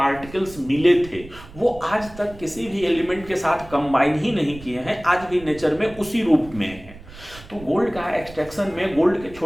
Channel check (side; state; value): right; noise; rumble, 18 dB below the sound